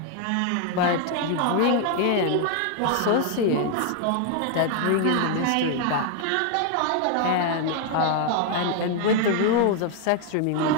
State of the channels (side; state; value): both; different; correlation 0.00